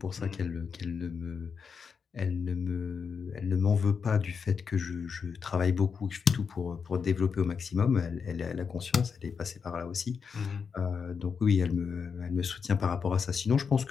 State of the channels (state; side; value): quieter; right; 6.0 dB